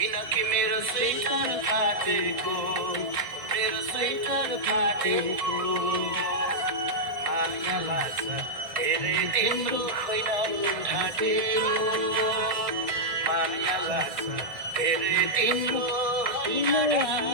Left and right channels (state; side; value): late; left; 1.6 ms